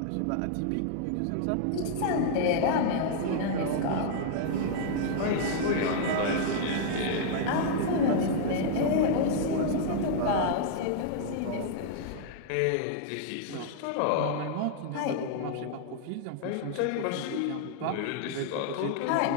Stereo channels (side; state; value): both; different; correlation -0.01